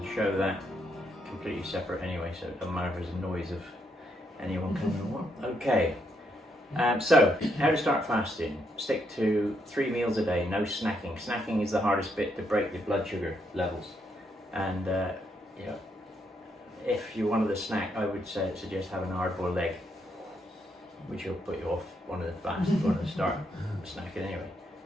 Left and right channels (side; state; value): both; normal; correlation 0.76